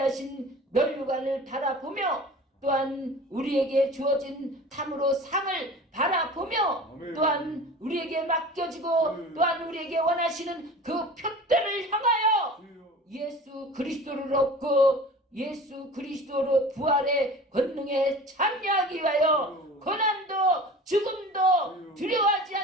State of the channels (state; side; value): normal; both; correlation 0.39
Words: 멸류관을 바라보며 또한 우리에게 주어진 탐으로 상을 바라보며 아멘. 또한 우리에게 맡겨지고 또한 우리에게 원하시는 그 표대를 향하여 예수 그리스도를 얻고 예수 그리스도로 부활의 권능에 참여하기 위하여 고난도 죽음도 두려워하지